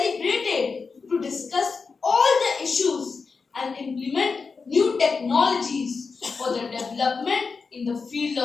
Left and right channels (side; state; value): right; quieter; 4.8 dB